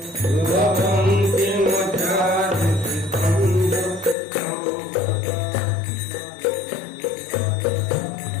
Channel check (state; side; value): drops out; right; at 4.2 s